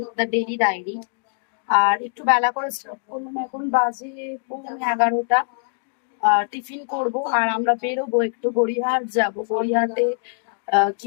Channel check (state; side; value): silent; right; digital silence